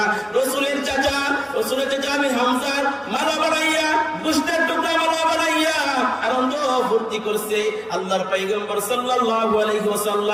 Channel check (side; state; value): both; identical; correlation 1.00